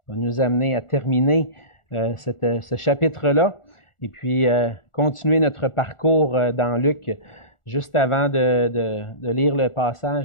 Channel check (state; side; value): late; right; 1.4 ms